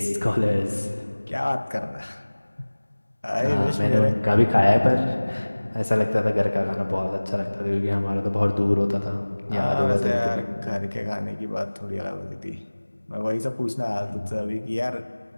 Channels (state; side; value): inverted; both; correlation -1.00